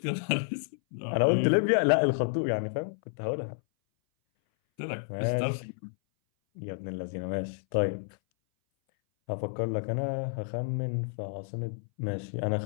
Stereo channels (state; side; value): silent; right; 58 dB below the other